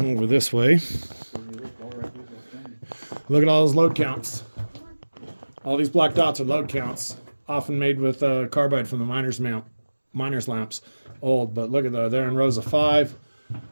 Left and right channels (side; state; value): both; inverted; correlation -1.00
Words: over this way. Look at all those load counts. All these black dots are load counts, often made with carbide from the miner's lamps. Old, but look at that. They're in rows of 5.